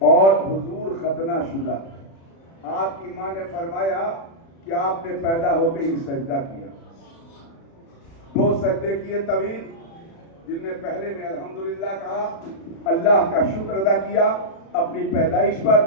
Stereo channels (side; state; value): right; late; 36 ms